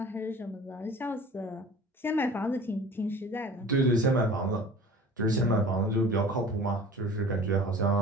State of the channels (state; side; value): normal; both; correlation 0.43